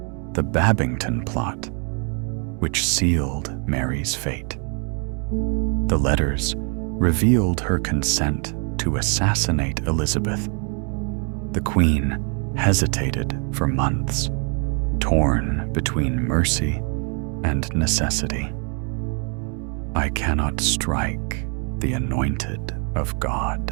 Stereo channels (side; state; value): left; quieter; 38.3 dB